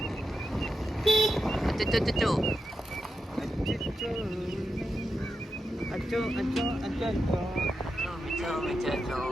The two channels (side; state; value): both; normal; correlation 0.88